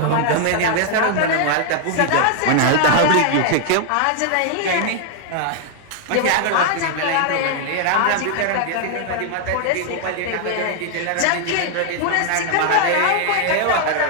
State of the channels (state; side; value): different; both; correlation 0.00